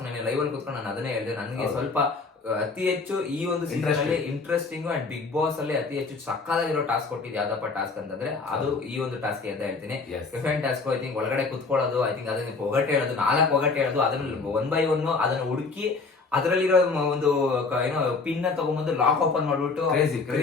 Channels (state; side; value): quieter; right; 4.2 dB